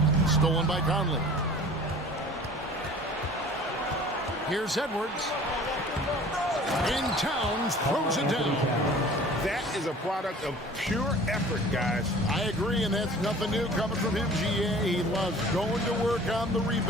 Stolen by Conley. Here's Edwards. And Towns throws it down. That is a product of pure effort, guys. I agree, and that's nothing new coming from him, GA. He loves going to work on the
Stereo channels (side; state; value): both; normal; correlation 0.46